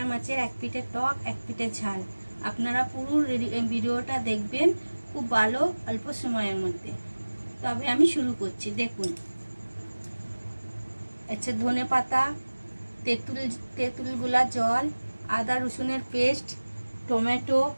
মাছের এক পিঠে টক এক পিঠে ঝাল। আপনারা পুরো ভিডিওটা দেখবেন, খুব ভালো, অল্প সময়ের মধ্যে। তবে আমি শুরু করছি। দেখুন, আচ্ছা, ধনে পাতা, তেঁতুলগুলা জল, আদা রসুনের পেস্ট, টমেটো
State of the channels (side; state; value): both; inverted; correlation -1.00